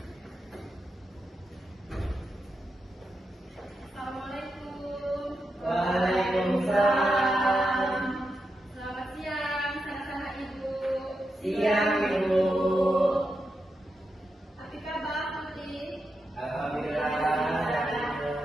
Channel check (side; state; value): both; normal; correlation 0.87